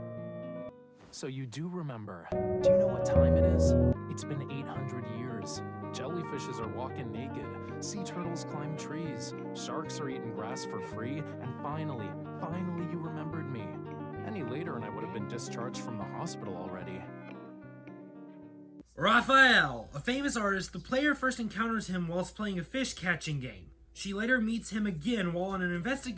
So you do remember. Do you know what time it is? It's been 800 years. Jellyfishes are walking naked. Sea turtles climb trees. Sharks are eating grass for free. And finally you remembered me. Any later and I would have been discharged from the hospital already. Rafayel, a famous artist, the player first encounters him whilst playing a fish catching game. She later meets him again while on an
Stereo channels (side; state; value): both; identical; correlation 1.00